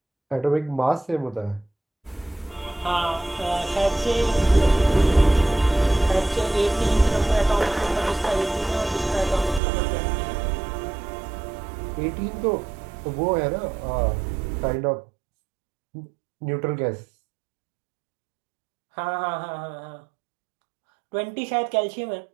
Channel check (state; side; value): drops out; left; at 9.6 s